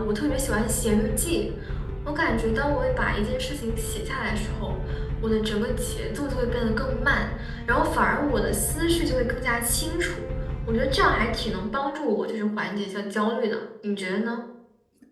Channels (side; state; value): both; identical; correlation 1.00